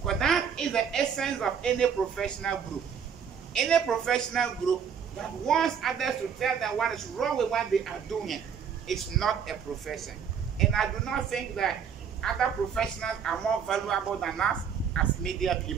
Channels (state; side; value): quieter; left; 7.3 dB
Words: Because that is the essence of any professional group. Any professional group that wants others to tell them what is wrong with what they are doing is not a profession. And I do not think that other professionals are more valuable than us as media